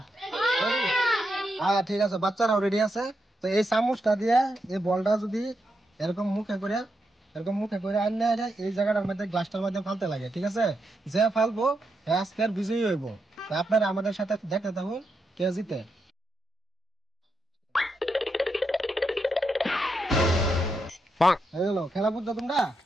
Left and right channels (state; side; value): normal; both; correlation 0.84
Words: হ্যাঁ ঠিক আছে, বাচ্চারাও রেডি আছে। তো এই চামচটা দিয়ে এই বলটা যদি এরকম মুখে করে আনলে এই জায়গাটার মধ্যে গ্লাসটার মধ্যে ফালতে লাগে, ঠিক আছে? যে ফালবো আজকের বিজয়ী হইব। আপনারা আমাদের সাথে দেখতে থাকুন কে জিতে। খেলা বুঝছো তোমরা?